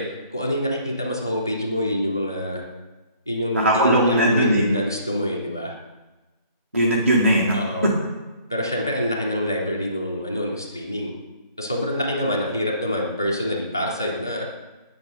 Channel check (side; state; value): both; inverted; correlation -0.59